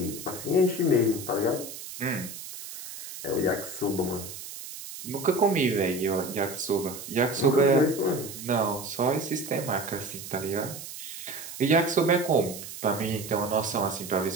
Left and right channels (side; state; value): right; noise; hiss, 11 dB below the sound